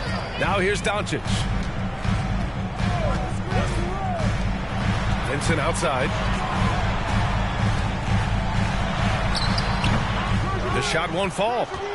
Now here's Doncic. Vincent outside. The shot won't fall.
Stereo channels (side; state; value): both; identical; correlation 1.00